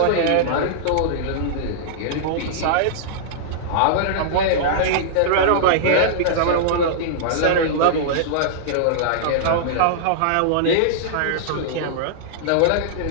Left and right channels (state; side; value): different; both; correlation -0.02